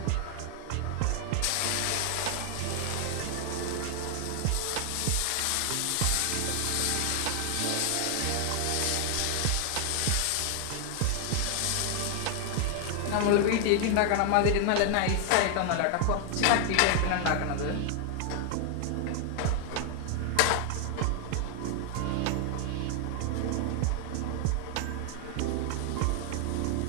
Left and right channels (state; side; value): different; both; correlation 0.00